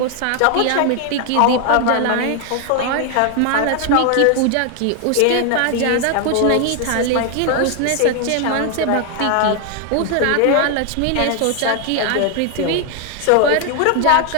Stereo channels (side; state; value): both; different; correlation 0.00